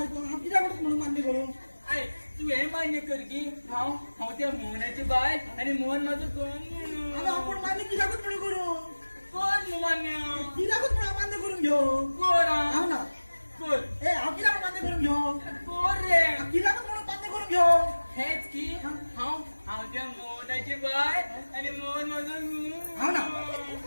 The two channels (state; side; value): inverted; both; correlation -1.00